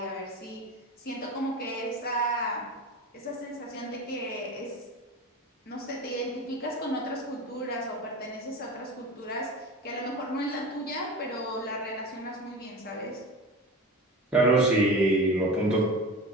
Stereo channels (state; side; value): normal; both; correlation 0.30